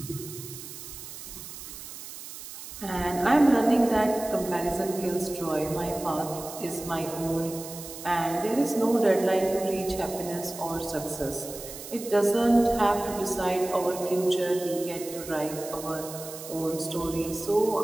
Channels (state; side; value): noise; right; hiss, 12 dB below the sound